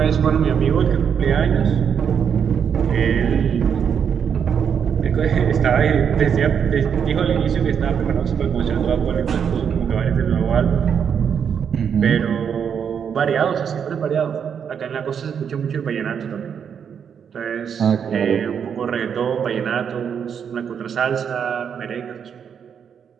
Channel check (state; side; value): quieter; left; 7.5 dB